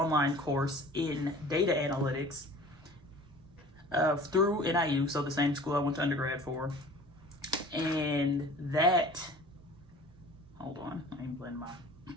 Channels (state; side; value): noise; right; rumble, 30 dB below the sound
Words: course in data analytics through NIU, so the same school I went to undergrad for. And that, hold on, let me blend my